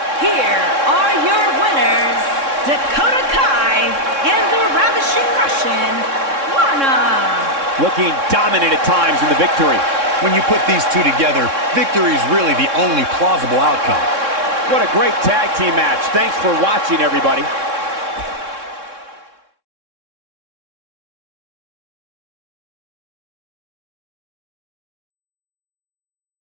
Here are your winners, Dakota Kai and the Ravishing Russian, Lana. Looking dominant at times in the victory. When you put these two together, victory is really the only plausible outcome. What a great tag team match. Thanks for watching, everybody.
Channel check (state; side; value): late; left; 3.6 ms